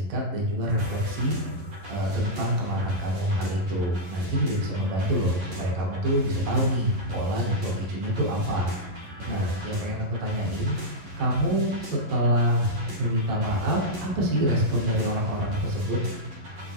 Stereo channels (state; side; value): late; left; 11 ms